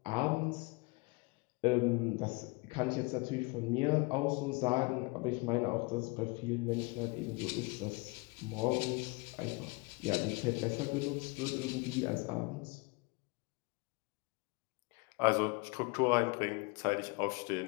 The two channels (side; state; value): right; quieter; 27.3 dB